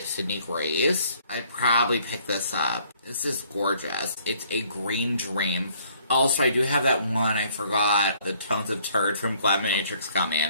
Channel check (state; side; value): inverted; both; correlation -0.61